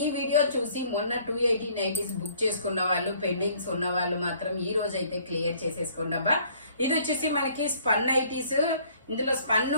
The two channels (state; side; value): inverted; both; correlation -0.59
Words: ఈ వీడియో చూసి మొన్న 280 నైటీస్ బుక్ చేసుకున్న వాళ్ళు, పెండింగ్స్ ఉన్న వాళ్ళు మాత్రం ఈ రోజు అయితే క్లియర్ చేసేసుకోండి అబ్బా. ఇది వచ్చేసి మనకి స్పన్ నైటీస్. ఇందులో